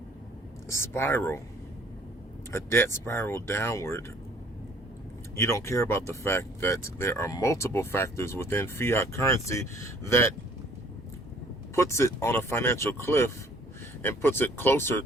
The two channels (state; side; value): normal; both; correlation 0.56